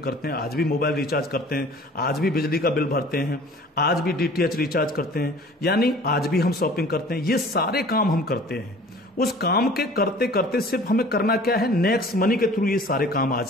करते हैं, आज भी मोबाइल रिचार्ज करते हैं, आज भी बिजली का बिल भरते हैं, आज भी DTH रिचार्ज करते हैं, यानी आज भी हम शॉपिंग करते हैं। ये सारे काम हम करते हैं। उस काम के करते करते सिर्फ हमें करना क्या है, नेक्स्ट मनी के थ्रू ये सारे काम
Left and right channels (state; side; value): normal; both; correlation 0.47